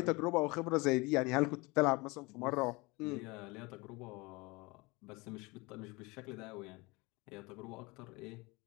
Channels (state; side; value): quieter; right; 25.1 dB